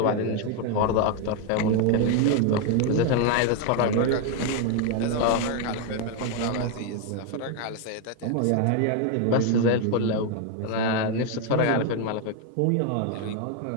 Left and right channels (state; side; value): different; both; correlation 0.01